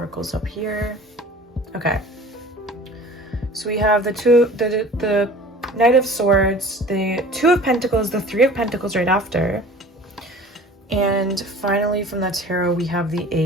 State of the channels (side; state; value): both; normal; correlation 0.44